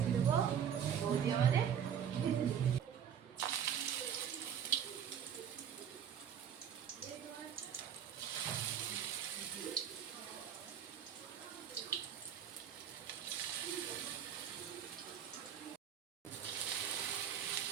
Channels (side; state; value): left; quieter; 8.6 dB